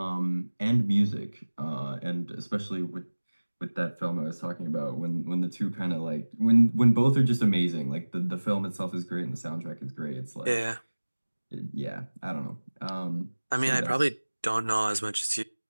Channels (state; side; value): inverted; both; correlation -1.00